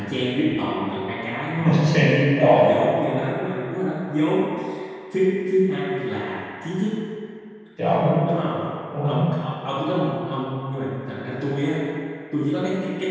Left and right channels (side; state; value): both; identical; correlation 1.00